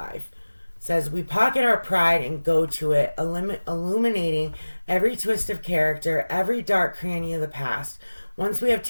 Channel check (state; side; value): inverted; both; correlation -1.00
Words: It says, we pocket our pride and go to it, illuminating every twist of character, every dark cranny of the past. Once we have